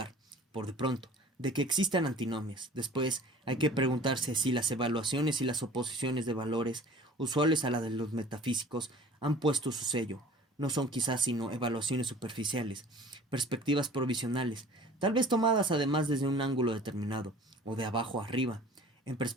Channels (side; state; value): both; normal; correlation 0.46